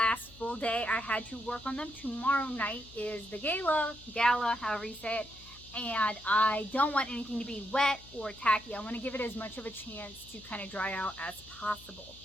full day I had to work on them. Tomorrow night is the Gala, however you say it, and I don't want anything to be wet or tacky. I want to give it as much of a chance to kind of dry out as possible.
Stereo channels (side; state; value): left; noise; hum, 21 dB below the sound